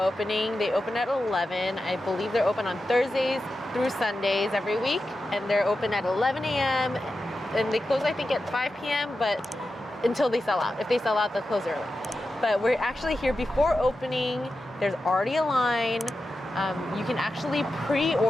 They open at 11. I believe they're open on Thursdays through Sundays every week. And they're open at 11 a.m. And they close, I think, at 5 p.m. but until they sell out. If they sell out, they'll close early. But we're actually here before opening. There's already a line. You can actually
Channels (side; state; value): both; normal; correlation 0.91